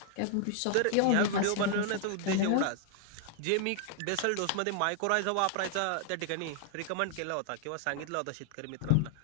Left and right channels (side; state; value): both; different; correlation 0.00